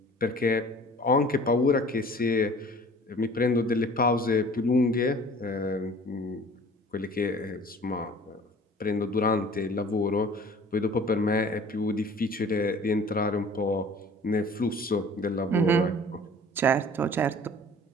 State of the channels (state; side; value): normal; both; correlation 0.47